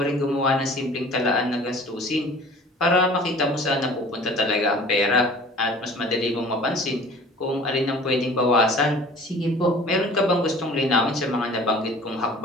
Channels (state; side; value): normal; both; correlation 0.46